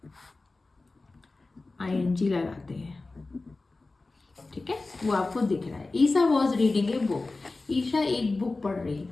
लगाते हैं, ठीक है। वो आपको दिख रहा है। Isha was reading a book, Isha एक बुक पढ़ रही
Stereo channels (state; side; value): quieter; right; 3.4 dB